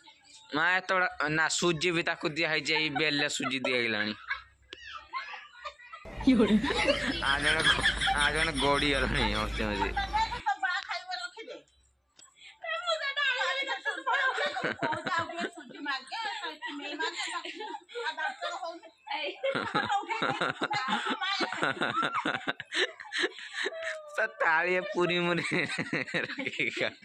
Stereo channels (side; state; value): both; identical; correlation 1.00